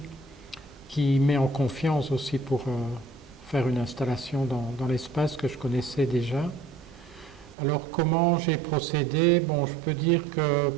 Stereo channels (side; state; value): left; drops out; at 7.6 s